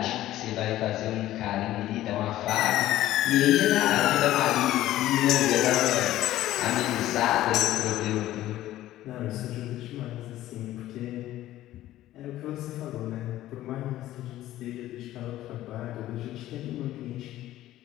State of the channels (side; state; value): right; quieter; 14.4 dB